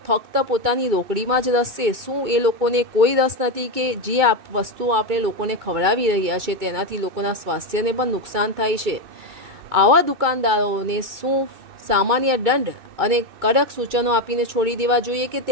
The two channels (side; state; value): left; late; 2.2 ms